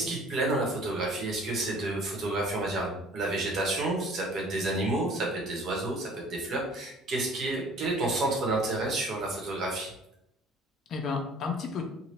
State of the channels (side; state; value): both; normal; correlation 0.51